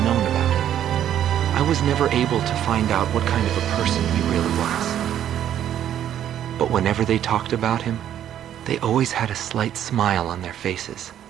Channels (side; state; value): left; quieter; 10.6 dB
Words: about him. I was never able to find out what kind of a person he really was. But whenever they talked about him, they always had a slight smile on their faces.